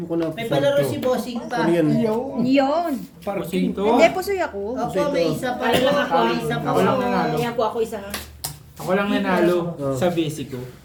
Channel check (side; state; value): both; identical; correlation 1.00